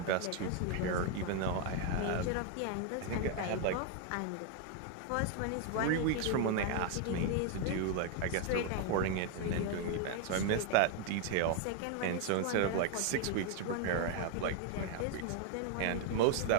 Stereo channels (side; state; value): both; different; correlation 0.01